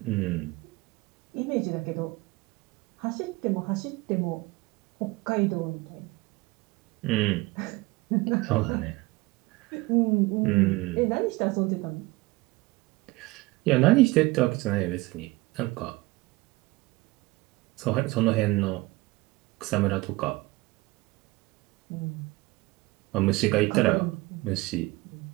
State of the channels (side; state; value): left; quieter; 21.8 dB